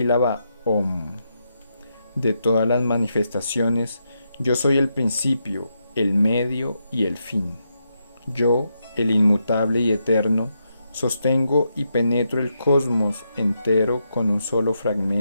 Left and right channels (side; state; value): both; inverted; correlation -0.83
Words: Om. De todas las manifestaciones, yo soy el principio, el medio y el fin. Yo, el inmutable y eterno, sostengo y penetro el cosmos entero con un solo